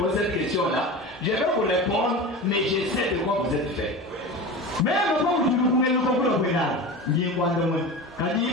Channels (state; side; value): normal; both; correlation 0.29